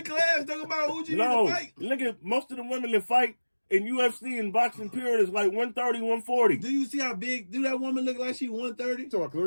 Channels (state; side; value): inverted; both; correlation -1.00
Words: class? Talking about who you No, need to fight? look at most of the women that fight in UFC and boxing period is like 130, 140. Do you see how big? Do that woman look like she 130? So